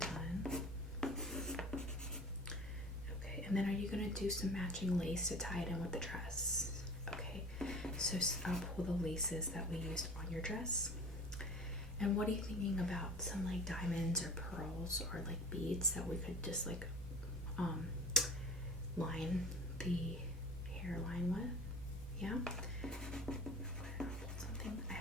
Okay, and then are you going to do some matching lace to tie it in with the dress? Okay, so I'll pull the laces that we used on your dress. And what are you thinking about some like diamonds or pearls or like beads that we could just like line the hairline with? Yeah? Okay, I'll pull something. I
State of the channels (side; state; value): both; normal; correlation 0.40